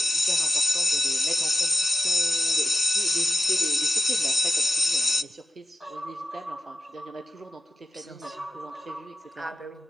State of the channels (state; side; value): normal; both; correlation 0.88